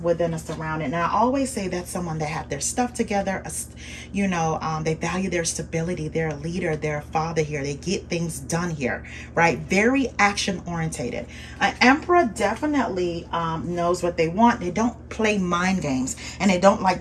a surrounding. And I always say that's someone that have their stuff together. They value their stability. They're a leader. They're a father here. They get things done here, right? Very action orientated. An Emperor definitely knows what they want. They don't play mind games, and they don't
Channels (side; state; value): both; identical; correlation 1.00